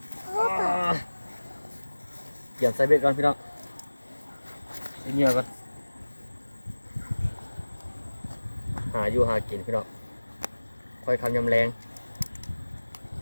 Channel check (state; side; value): inverted; both; correlation -1.00